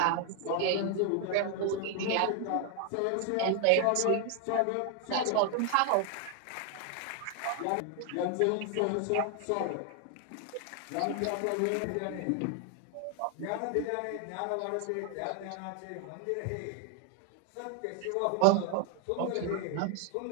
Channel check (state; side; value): different; both; correlation 0.01